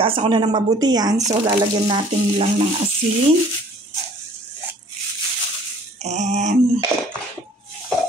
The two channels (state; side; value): normal; both; correlation 0.54